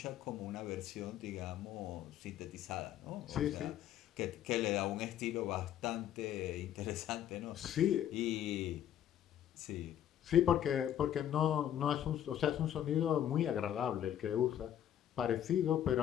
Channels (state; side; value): quieter; right; 10.7 dB